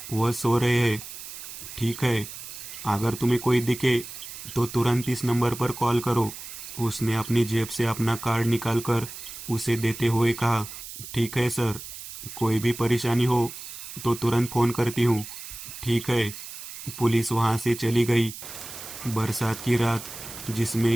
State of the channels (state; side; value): noise; right; hiss, 11 dB below the sound